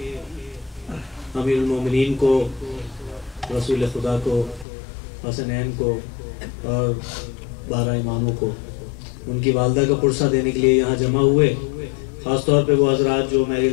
امیر المومنین کو، رسول خدا کو، حسنین کو اور 12 اماموں کو ان کی والدہ کا پرسہ دینے کے لیے یہاں جمع ہوئے۔ خاص طور پہ وہ حضرات جو میری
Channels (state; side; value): drops out; right; at 4.7 s